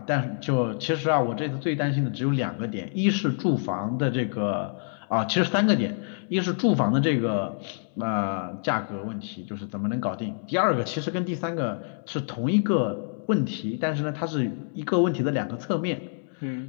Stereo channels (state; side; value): silent; right; 60 dB below the other